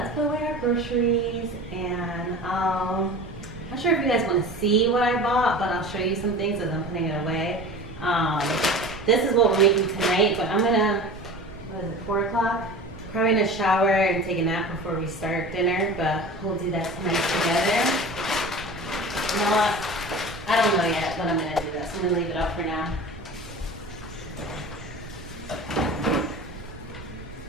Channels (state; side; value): noise; right; rumble, 16 dB below the sound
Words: put away our groceries, and I'm not sure if you guys want to see what I bought, but I'll show you some things as I'm putting it away. This is what we're making tonight, but I'm gonna, what is it, 4 o'clock? Probably gonna shower and take a nap before we start dinner, but we'll do that tonight together. You know what? I don't know yet, but I'm gonna do that, so I'm gonna leave it up for now.